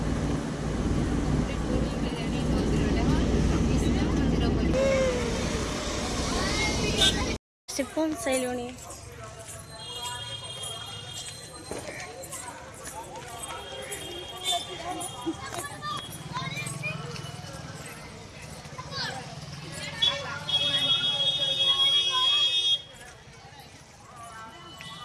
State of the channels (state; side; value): identical; both; correlation 1.00